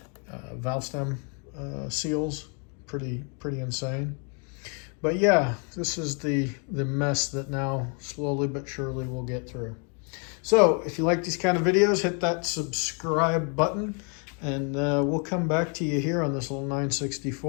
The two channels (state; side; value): quieter; right; 39.1 dB